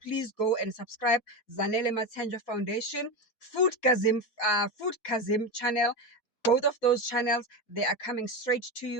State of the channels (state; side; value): late; right; 4.0 ms